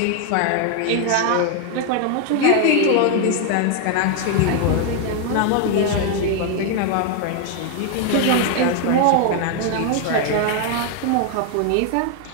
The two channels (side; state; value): both; different; correlation 0.00